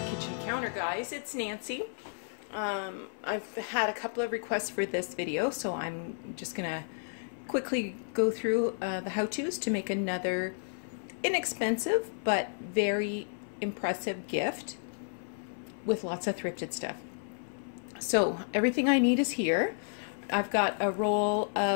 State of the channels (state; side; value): silent; right; 56 dB below the other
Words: counter, guys. It's Nancy. I've had a couple of requests for this video, so I'm just gonna quickly go through the how-tos to make another inexpensive but very impressive gift with lots of thrifted stuff. So everything I need is here. I've got a roll